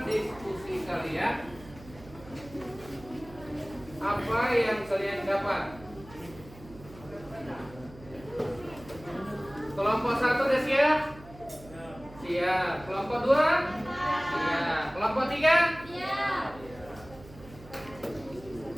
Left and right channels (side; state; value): right; noise; hum, 19 dB below the sound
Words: diskusi kalian, apa yang kalian dapat. Kelompok 1 udah siap? Siap. Kelompok 2? Siap. Kelompok 3? Siap.